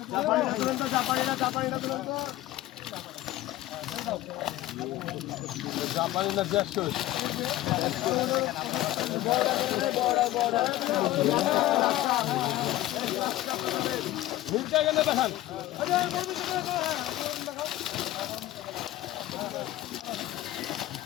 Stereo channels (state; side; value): quieter; right; 15.4 dB